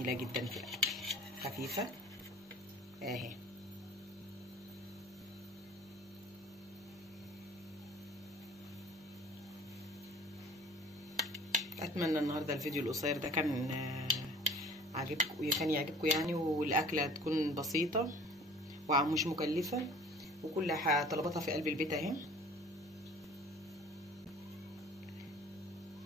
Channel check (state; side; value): normal; both; correlation 0.48